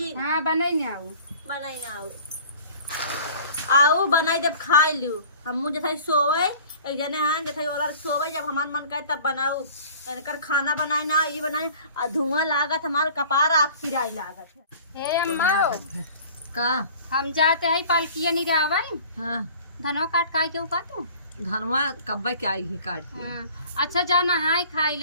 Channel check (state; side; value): inverted; both; correlation -0.47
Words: हां बनाई ना आऊ बनाई ना आऊ बनाई जब खाई लियो हम जैसे सोवे एक जने हां जैसे और सोवे जब हमार मन करे तब बनाऊ। इनकर खाना बनाए ना ये बनाए धुआं लागत हमार कपार आग पिराई लागत है। हे अम्मा का हम जाते हैं पालकिया नहीं रावै। हाँ धनवा काट काई के उका तू धनवा कब्बे के आई ही काट के। हाँ। अच्छा जा नहाए खाई